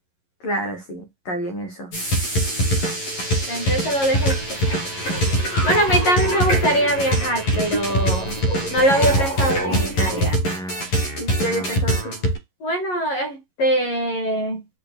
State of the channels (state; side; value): late; right; 11 ms